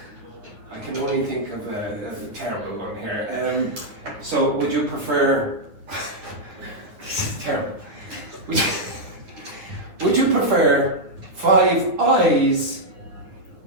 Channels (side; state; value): left; late; 9.4 ms